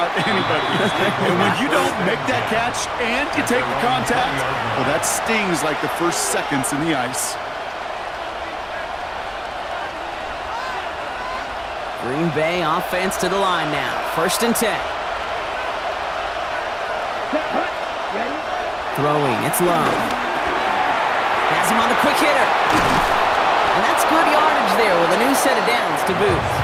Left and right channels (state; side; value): identical; both; correlation 1.00